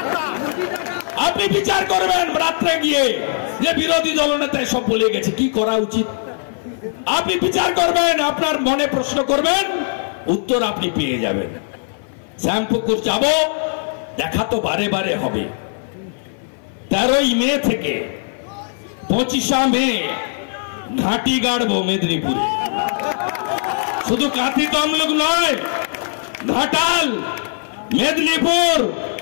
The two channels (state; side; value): silent; right; 58 dB below the other